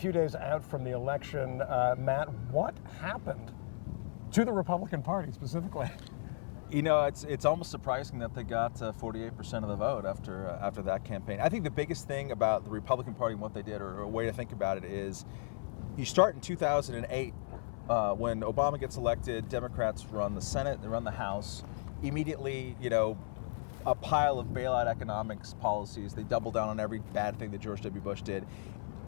days out from the election. Matt, what happened to the Republican Party specifically? You know, it's almost surprising that they got 48% of the vote after that campaign. I think the biggest thing about the Republican Party and what they did, or a way to think about it, is you start in 2008 when Obama gets elected. Democrats run the Senate, they run the House. Immediately, you know, a pile of bailout economics policies. They double down on every bad thing that George W. Bush did.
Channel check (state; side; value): silent; right; 54 dB below the other